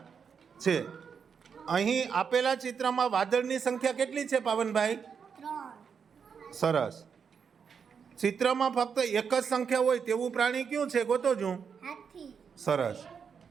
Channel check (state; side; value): quieter; left; 6.6 dB